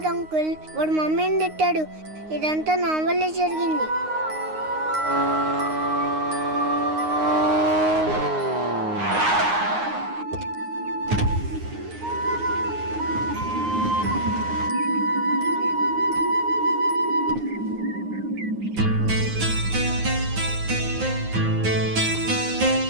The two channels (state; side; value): late; left; 9.6 ms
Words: అంకుల్, వాడు మమ్మీని తిట్టాడు. ఇదంతా నా వల్లే జరిగింది.